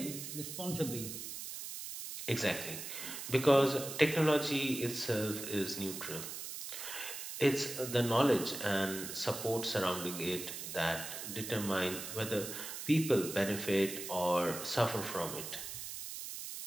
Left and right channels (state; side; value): noise; right; hiss, 7 dB below the sound